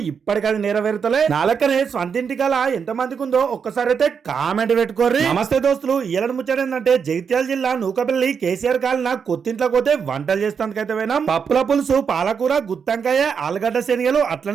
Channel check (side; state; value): left; quieter; 6.5 dB